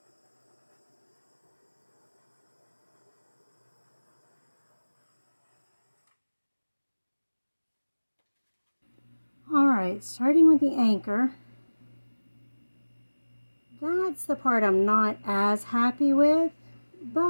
Alright, starting with the anchor. That's the part I'm not as happy with,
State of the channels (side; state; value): both; inverted; correlation -1.00